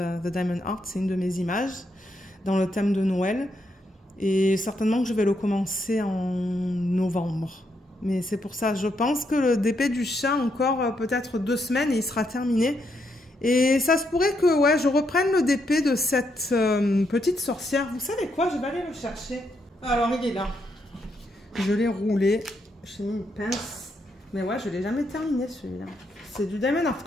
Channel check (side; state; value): both; normal; correlation 0.79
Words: Diamond Art. C'est une de mes images dans le thème de Noël. Et certainement que je vais le commencer en novembre. Mais c'est pour ça, je pense que le DP du chat, encore peut-être 2 semaines et il sera terminé. Et ça se pourrait que ouais, je reprenne le DP de cette petite sorcière. Vous savez quoi? Je vais aller le chercher. Alors il est là. Je l'ai roulé, j'ai mis une pince, mais ouais, je ne l'ai jamais terminé celui-là. C'est du Diamond Art